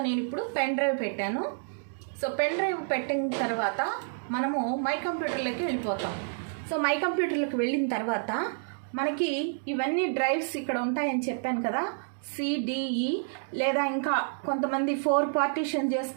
నేను ఇప్పుడు పెన్ డ్రైవ్ పెట్టాను. సో పెన్ డ్రైవ్ పెట్టిన తర్వాత మనము మై కంప్యూటర్లోకి వెళ్ళిపోతాం. సో మై కంప్యూటర్లోకి వెళ్ళిన తర్వాత మనకి ఇవన్నీ డ్రైవ్స్ ఇక్కడ ఉంటాయని చెప్పాను కదా, సిడిఈ లేదా ఇంకా కొంతమంది 4 పార్టీషన్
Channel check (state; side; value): silent; left; digital silence